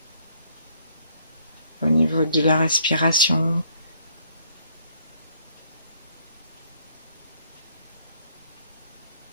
au niveau de la respiration,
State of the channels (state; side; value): inverted; both; correlation -0.66